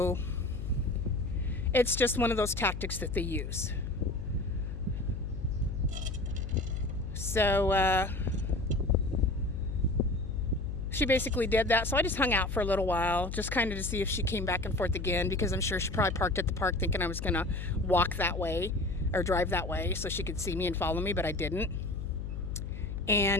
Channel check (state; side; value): noise; left; hum, 6 dB below the sound